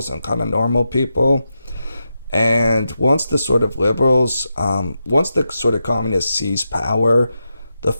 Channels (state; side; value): inverted; both; correlation -0.88